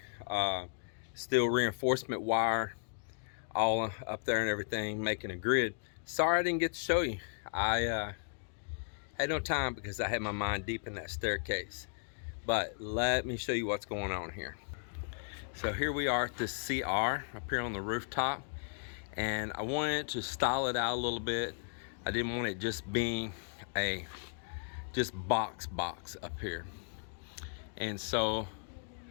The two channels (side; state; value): right; silent; digital silence